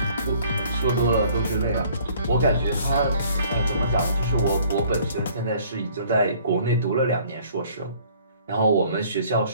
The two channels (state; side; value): inverted; both; correlation -0.56